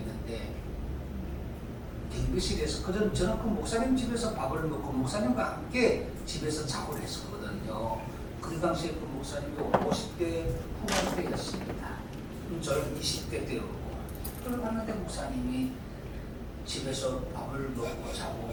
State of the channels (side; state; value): both; identical; correlation 1.00